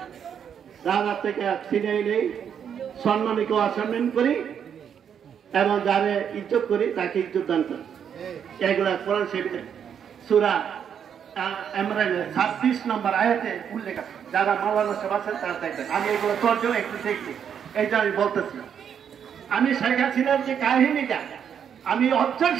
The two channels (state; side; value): quieter; left; 8.1 dB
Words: রাজা থেকে ছিনিয়ে নেই, সম্মানীকে অসম্মান করি এবং যারে ইজ্জত করি তাকে ইজ্জত দান করি। এগুলা কোরআন শরীফের সূরা ইমরানের 26 নম্বর আয়াতে উল্লেখ আছে। যারা মাওলানা সাহেব আছেন তারা দেখবেন। আমি এগুলো তর্জমা একটু দেখছি, এইটা আমি বলতেছি। আমি শেখ হাসিনার যে কাহিনীটা আমি